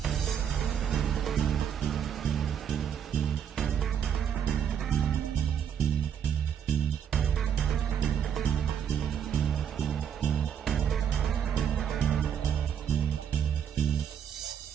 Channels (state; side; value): quieter; left; 8.4 dB